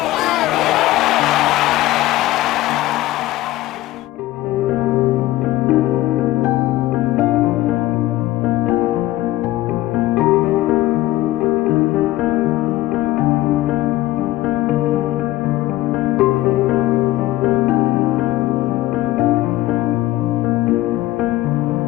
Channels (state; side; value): quieter; right; 16.3 dB